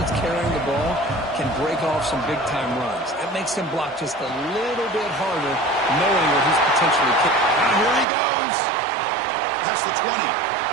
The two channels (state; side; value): drops out; left; at 8.1 s